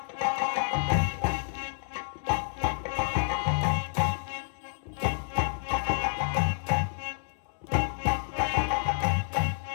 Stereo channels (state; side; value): silent; right; 58 dB below the other